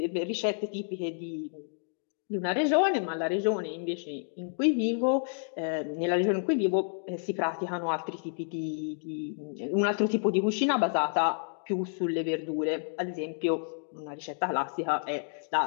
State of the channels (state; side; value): silent; right; digital silence